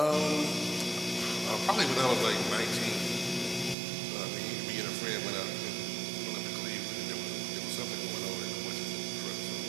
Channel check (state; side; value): drops out; left; at 3.8 s